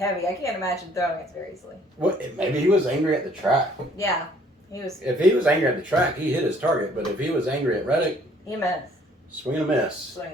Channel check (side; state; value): both; normal; correlation 0.60